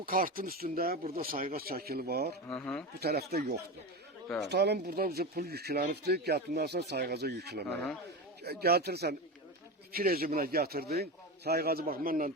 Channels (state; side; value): normal; both; correlation 0.21